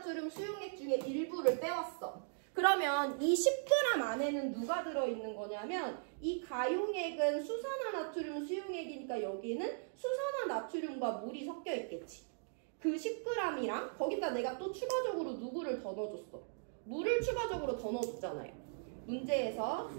수용액 중에 일부를 떼왔어. 그러면 이 10g 안에는 누가 들어있는 거냐면 이 가용액은 수산화나트륨 수용액이니까 여기는 수산화나트륨과 물이 섞여 있겠지. 그 10g이랑 거기다 내가 또 추가적으로 누구를 더 넣어줬어. 물을 추가적으로 더 넣어줬잖아요. 문제에서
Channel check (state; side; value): silent; left; digital silence